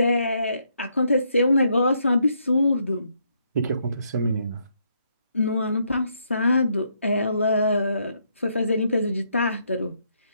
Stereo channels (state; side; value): inverted; both; correlation -0.74